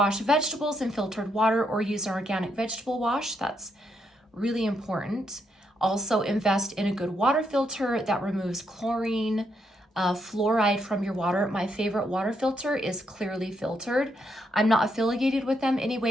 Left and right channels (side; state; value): both; normal; correlation 0.77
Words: vegetables in filtered water or use an organic vegetable wash. That's really important. Also invest in a good water filter that removes chlorine, fluoride from your water. My favorite water filter is Clearly Filtered. I'm not affiliated with them